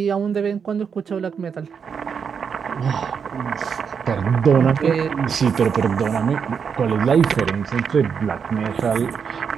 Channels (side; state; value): left; quieter; 6.6 dB